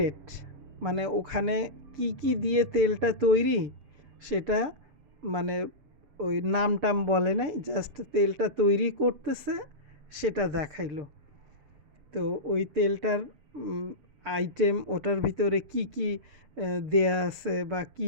মানে ওখানে কি কি দিয়ে তেলটা তৈরি সেটা মানে ওই নাম টাম বলে নাই, জাস্ট তেলটা তৈরি করতেছে সেটা দেখাইলো। তো ওই তেলটার আইটেম, ওটার ভিতরে কি কি দেয়া আছে বা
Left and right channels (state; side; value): late; left; 6.8 ms